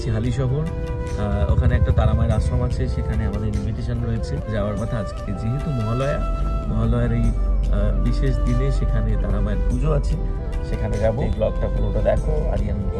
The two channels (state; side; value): identical; both; correlation 1.00